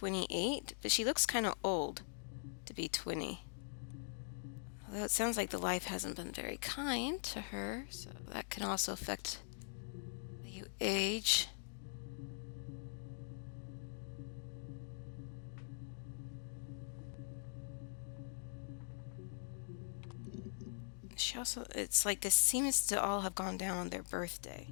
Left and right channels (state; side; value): silent; right; digital silence